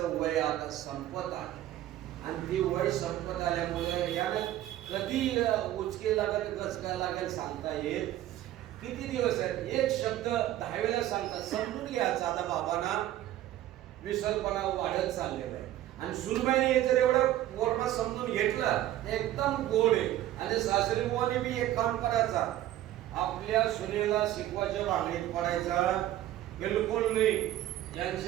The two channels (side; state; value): left; quieter; 13.6 dB